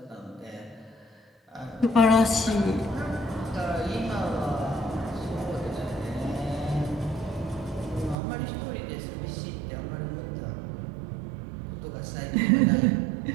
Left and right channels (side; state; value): left; drops out; at 8.2 s